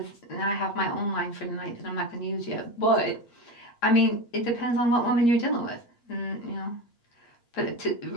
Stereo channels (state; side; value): late; right; 8.5 ms